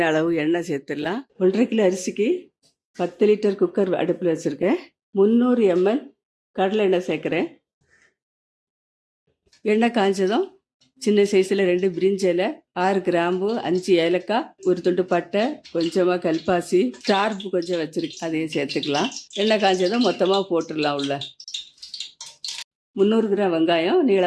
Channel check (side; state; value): both; identical; correlation 1.00